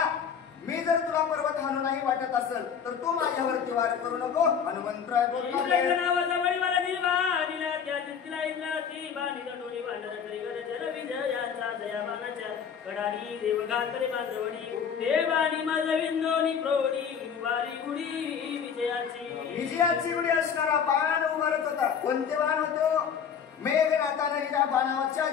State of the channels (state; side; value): quieter; right; 7.3 dB